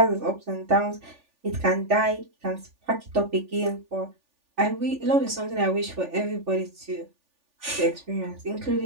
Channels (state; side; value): late; left; 3.4 ms